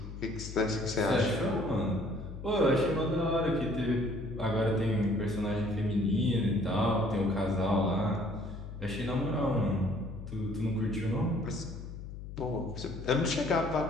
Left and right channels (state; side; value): noise; left; hum, 10 dB below the sound